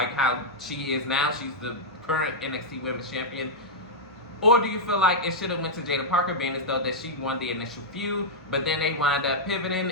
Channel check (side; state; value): both; normal; correlation -0.06